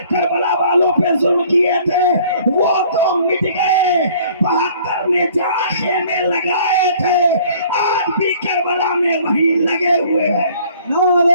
کربلا والوں پہ ظلم کیے تھے وہ تو مٹ گئے۔ 72 نے جہاں خیمے لگائے تھے آج بھی کربلا میں وہی لگے ہوئے ہیں۔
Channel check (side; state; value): both; inverted; correlation -0.55